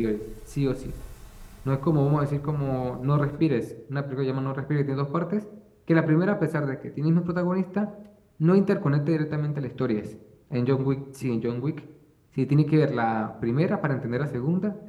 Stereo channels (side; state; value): both; identical; correlation 1.00